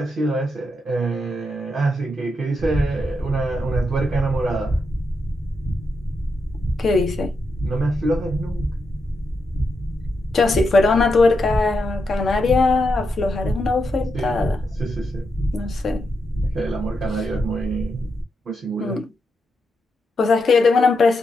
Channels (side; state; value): both; normal; correlation 0.84